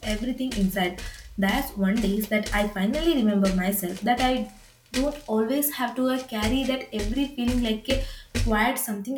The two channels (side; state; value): both; identical; correlation 1.00